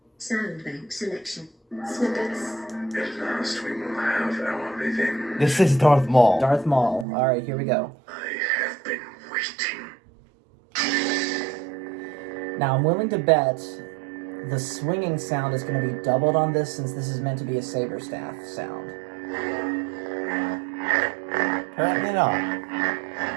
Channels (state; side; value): drops out; left; at 7.1 s